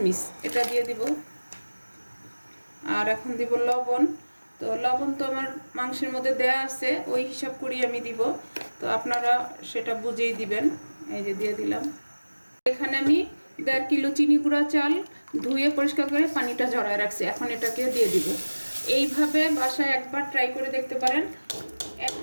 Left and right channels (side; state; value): both; inverted; correlation -1.00